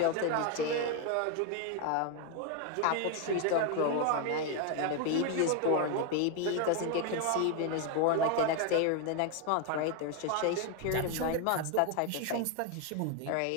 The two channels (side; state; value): both; different; correlation 0.01